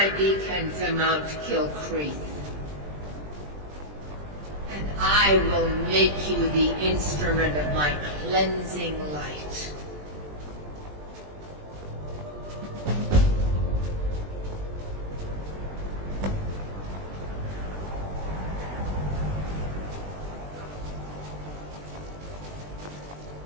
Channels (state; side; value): late; left; 20 ms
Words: beacon to Mount Kilcreath, and I will make you the instrument of my cleansing light.